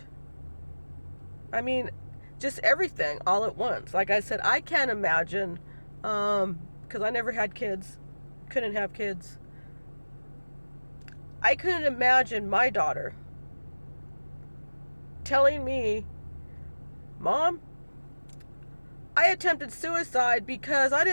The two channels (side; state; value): both; inverted; correlation -1.00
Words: I mean, just everything all at once. Like I said, I can't imagine, because I never had kids, couldn't have kids. I couldn't imagine my daughter telling me, Mom, I attempted suicide because I